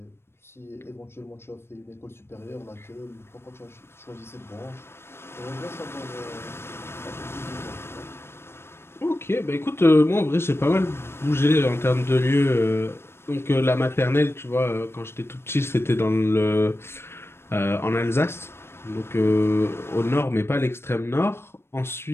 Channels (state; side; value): late; right; 0.12 ms